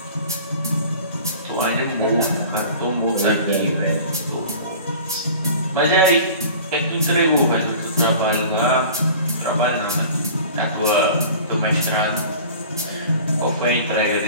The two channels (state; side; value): inverted; both; correlation -0.43